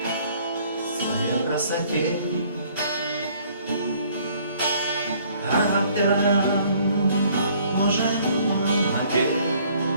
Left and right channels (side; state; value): both; inverted; correlation -0.59